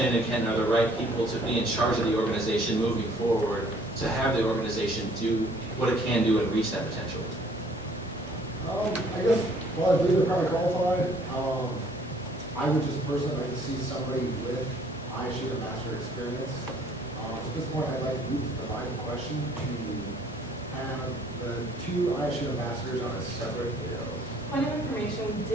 and Ken are the right people to be in charge of the organization moving forward, to have the organization do what it can do and reach that potential. I guess, well, I believe they're probably qualified. I would just personally like to see somebody with ISU ambassador experience. At this point, I'd like to move to the line of question to have the two ISU ambassadors on a separate bill. Point of information, we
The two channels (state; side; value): normal; both; correlation 0.59